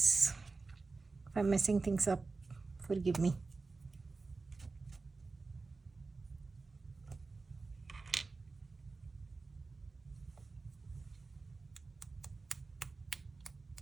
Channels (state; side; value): quieter; left; 3.9 dB